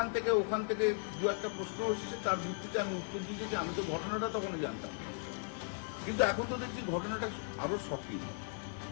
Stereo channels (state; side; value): silent; right; 53 dB below the other